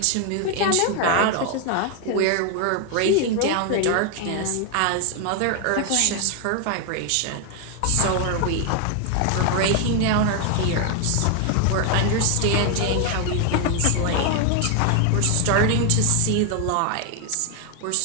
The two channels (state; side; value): different; both; correlation 0.01